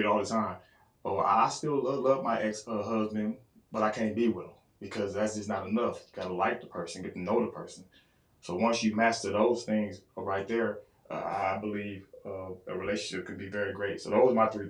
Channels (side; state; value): both; identical; correlation 1.00